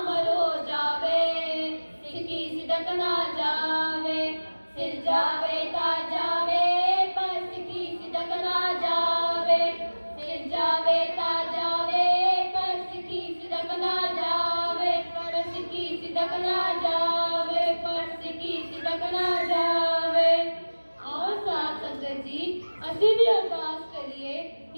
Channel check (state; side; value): inverted; both; correlation -1.00